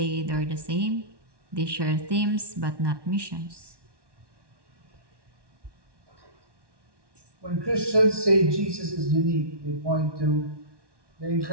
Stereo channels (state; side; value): late; left; 1.1 ms